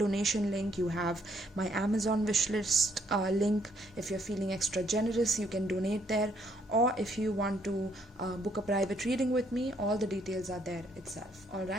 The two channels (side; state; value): both; normal; correlation 0.69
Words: link, you have my Amazon wishlist link. If you're feeling extra generous, you can donate there. Or if you want to book a private reading with me, all the details are there itself.